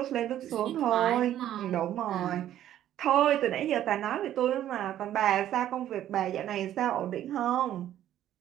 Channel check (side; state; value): left; quieter; 11.9 dB